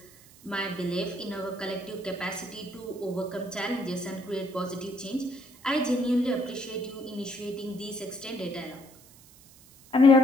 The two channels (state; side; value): noise; right; hiss, 23 dB below the sound